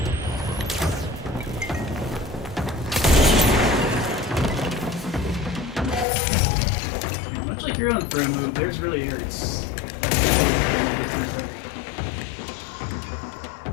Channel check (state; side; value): drops out; right; at 6.1 s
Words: Much like your own throw move, theirs really hurts.